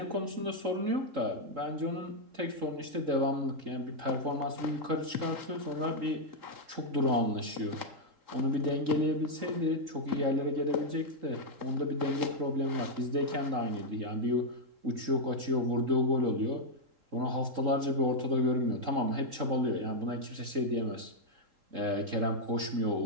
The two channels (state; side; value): late; left; 3.8 ms